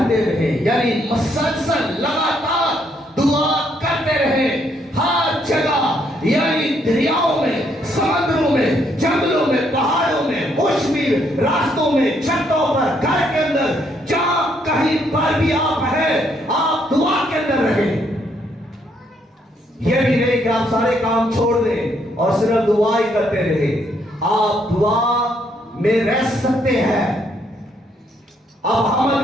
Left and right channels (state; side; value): normal; both; correlation 0.72